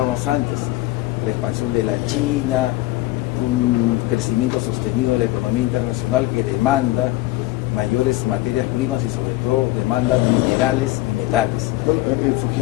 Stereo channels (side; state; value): right; quieter; 18.0 dB